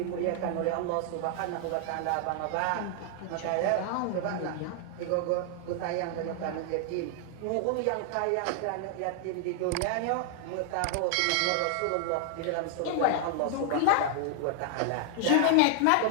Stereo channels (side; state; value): both; different; correlation 0.00